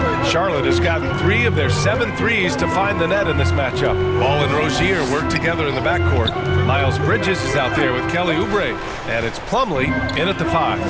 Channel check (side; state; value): both; identical; correlation 1.00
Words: Charlotte has gotten 3 of their 7 threes to find the net in this matchup. Ball and Rozier work together in the backcourt. Miles Bridges is out there with Kelly Oubre. And it's Plumlee in at the 5.